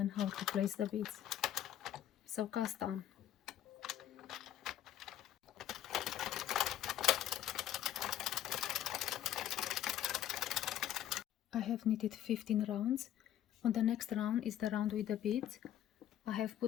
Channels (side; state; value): right; quieter; 11.6 dB